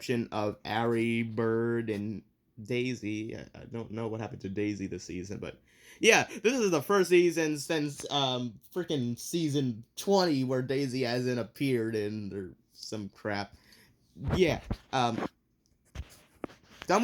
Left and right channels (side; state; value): both; identical; correlation 1.00